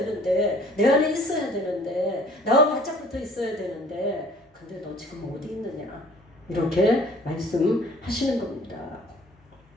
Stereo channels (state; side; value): normal; both; correlation 0.53